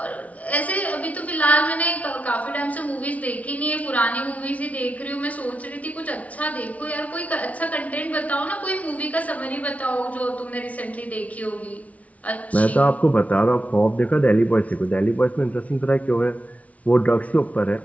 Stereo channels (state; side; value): late; right; 0.068 ms